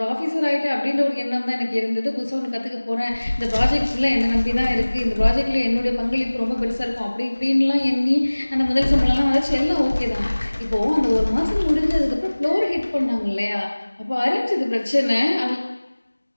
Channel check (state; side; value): inverted; both; correlation -1.00